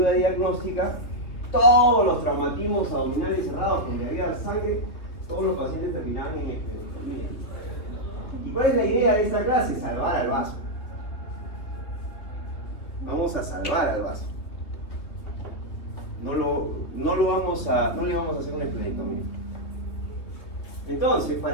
diagnóstica, todos los traumatismos abdominales cerrados donde había sangre, todos los pacientes terminaban en esplenectomía. ¿Y cuál es la idea de esta clase? Salvar al vaso. Vamos a salvar al vaso. No le vamos a hacer una esplenectomía. Entonces,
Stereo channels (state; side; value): late; right; 3.0 ms